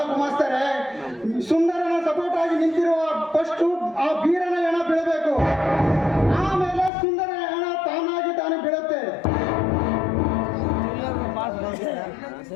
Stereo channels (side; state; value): right; drops out; at 6.9 s